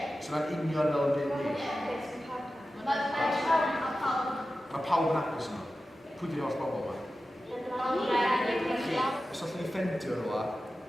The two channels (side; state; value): both; normal; correlation 0.94